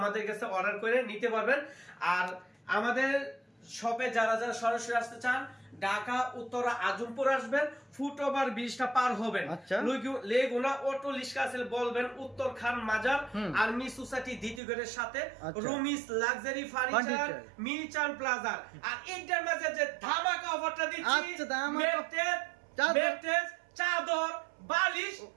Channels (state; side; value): drops out; left; at 14.6 s